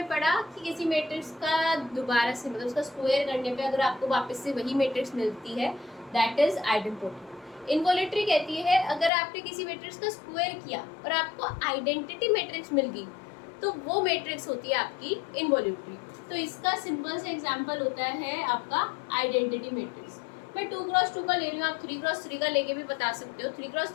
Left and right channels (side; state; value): right; drops out; at 9.1 s